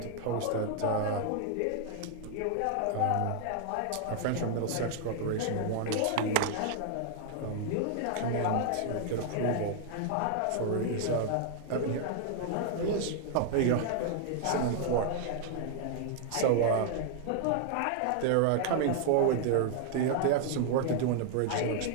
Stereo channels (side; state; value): both; different; correlation 0.00